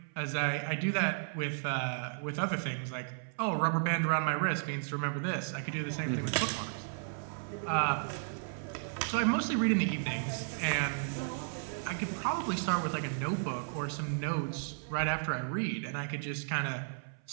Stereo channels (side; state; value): left; silent; 55 dB below the other